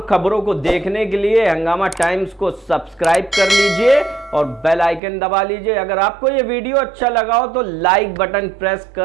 खबरों को देखने के लिए हंगामा टाइम्स को सब्सक्राइब कर लीजिए और बेल आइकन दबा लीजिए। अगर आपको ये वीडियो अच्छा लगा हो तो लाइक बटन प्रेस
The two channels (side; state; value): left; drops out; at 5.0 s